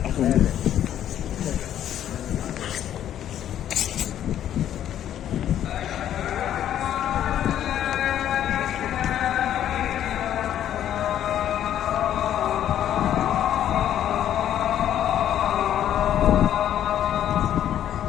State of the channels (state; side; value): quieter; right; 10.9 dB